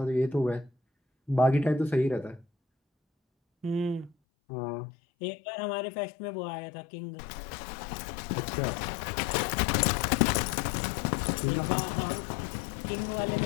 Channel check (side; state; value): right; drops out; at 4.2 s